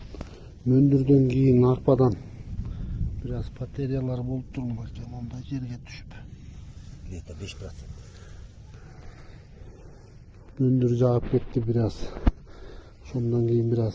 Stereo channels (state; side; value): identical; both; correlation 1.00